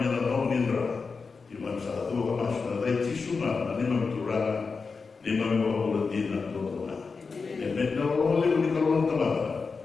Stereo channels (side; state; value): right; quieter; 4.7 dB